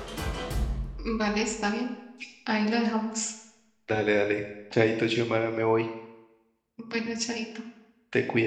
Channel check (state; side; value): identical; both; correlation 1.00